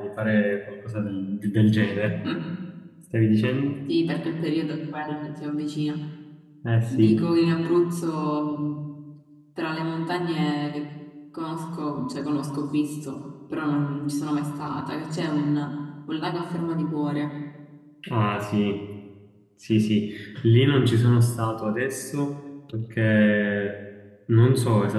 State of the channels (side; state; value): both; identical; correlation 1.00